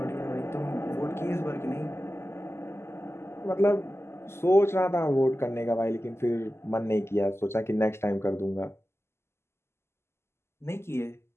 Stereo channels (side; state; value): right; late; 0.12 ms